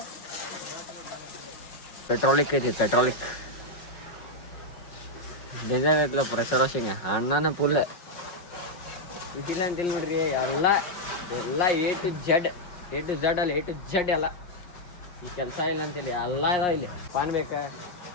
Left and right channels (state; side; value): late; right; 5.5 ms